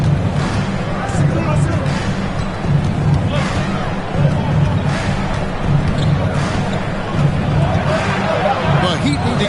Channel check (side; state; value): both; identical; correlation 1.00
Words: The Heat need to